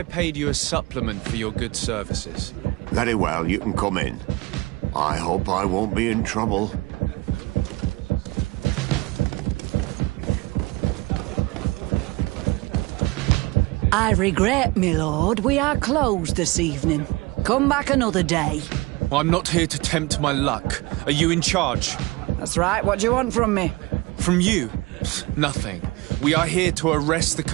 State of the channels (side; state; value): left; quieter; 21.5 dB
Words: paid you a supplement for your good services? Very well, you can come in. I hope I won't be in trouble. I regret, my lord, we are closed this evening. Come back another day. I'm not here to tempt my luck. Are you in charge? That's right. What do you want from me? From you? Nothing. We are here to arrest the